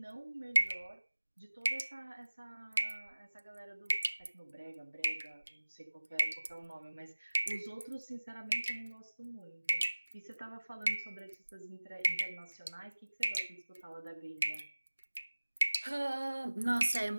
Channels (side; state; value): both; inverted; correlation -1.00